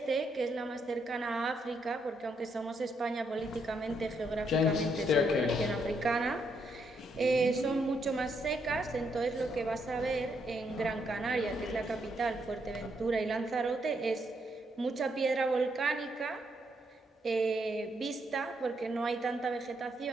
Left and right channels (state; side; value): normal; both; correlation 0.76